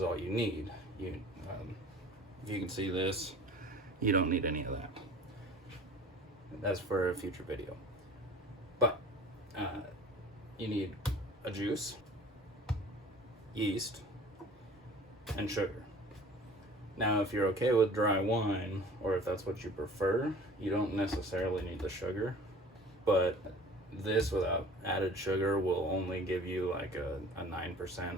all you need. If you can see this, you don't need any of that. That's for a future video. But you need a juice, yeast, and sugar. Now, if you're okay with dry wine, or if that's what you prefer, you don't necessarily need the sugar. But this without added sugar will only give you like a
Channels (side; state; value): both; normal; correlation 0.45